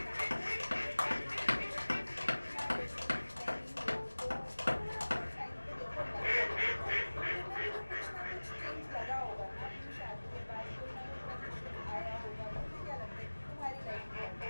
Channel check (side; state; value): both; inverted; correlation -1.00